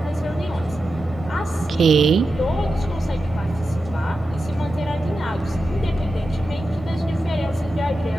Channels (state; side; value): normal; both; correlation 0.90